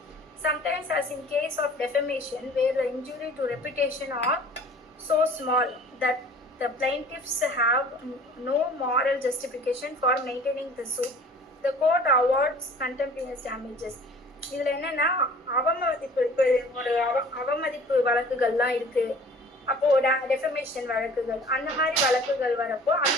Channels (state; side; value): normal; both; correlation 0.48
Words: Sometimes, as in case of defamation, where the injury to reputation are so small that the plaintiffs have no moral justification for maintaining the suit, the court awards contemporaneous damages. இதில் என்னென்னா அவமதிப்பு வழக்குகள்லாம் இருக்குது. அப்போது defamation வழக்குகள், அந்த மாதிரி வழக்குகள் வரப்போ